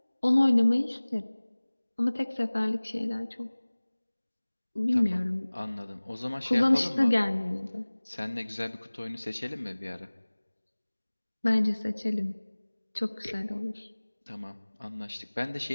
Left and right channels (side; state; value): both; inverted; correlation -1.00